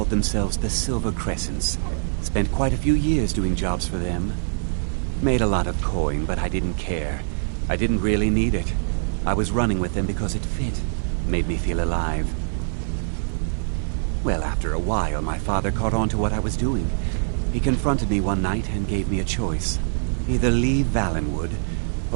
themselves the Silver Crescents. Spent quite a few years doing jobs for them. Made a lot of coin, but I didn't care. I didn't really need it. I was running with them because it fit. Made me feel alive. Well, after a while, my father caught on to what I was doing. He confronted me one night and gave me a choice. Either leave Valenwood,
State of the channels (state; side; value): silent; left; digital silence